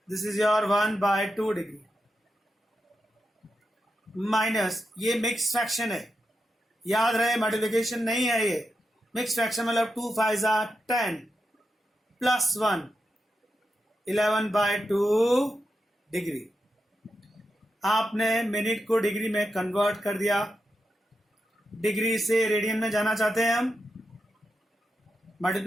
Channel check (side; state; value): both; normal; correlation 0.87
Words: this is your 1/2 degree, minus, ये मिक्स फ्रैक्शन है, याद रहे मल्टीप्लिकेशन नहीं है ये। मिक्स फ्रैक्शन मतलब 2 5 10 प्लस 1, 11/2 डिग्री। आपने मिनट को डिग्री में कन्वर्ट कर दिया, डिग्री से रेडियन में जाना चाहते हैं हम,